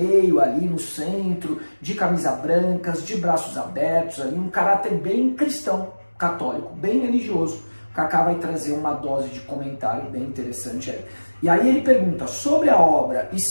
ali no centro, de camisa brancas, de braços abertos, ali, um caráter bem cristão, católico, bem religioso. O Kaká vai trazer uma dose de comentário bem interessante aí. E aí ele pergunta sobre a obra e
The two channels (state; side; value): inverted; both; correlation -1.00